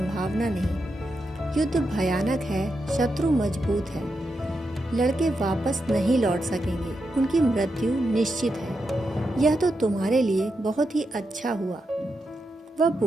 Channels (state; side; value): normal; both; correlation 0.86